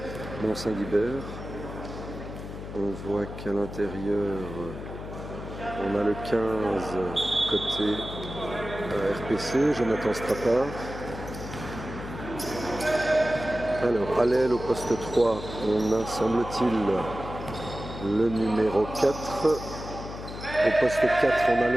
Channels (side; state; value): left; noise; hum, 10 dB below the sound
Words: Mont-Saint-Guibert. On voit qu'à l'intérieur, on a le 15 côté RPC, Jonathan Strappard. Alors, à l'aile au poste 3, on a, semble-t-il, le numéro 4. Au poste 4, on a